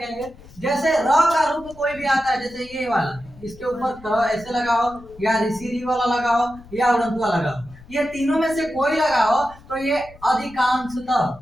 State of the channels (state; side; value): noise; left; rumble, 21 dB below the sound